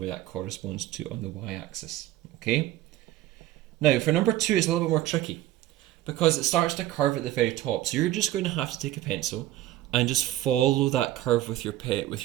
that corresponds to on the y-axis. Okay? Now, for number 2, it's a little bit more tricky, because it starts to curve at the very top. So you're just going to have to take a pencil and just follow that curve with your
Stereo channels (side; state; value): left; quieter; 14.4 dB